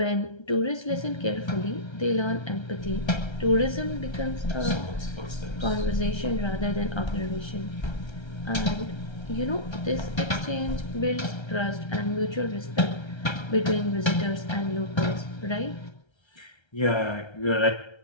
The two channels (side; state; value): right; late; 1.3 ms